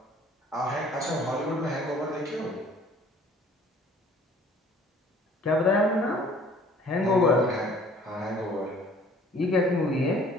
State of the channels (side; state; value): both; normal; correlation 0.54